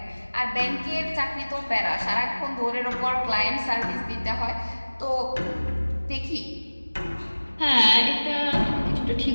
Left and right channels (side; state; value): both; inverted; correlation -1.00